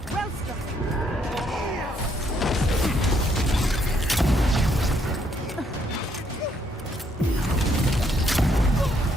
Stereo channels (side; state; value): both; normal; correlation 0.71